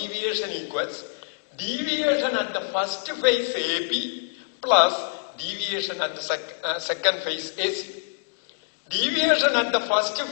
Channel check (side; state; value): right; silent; digital silence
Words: equals deviation at the first phase AB plus deviation at the second phase AC. Deviation at the first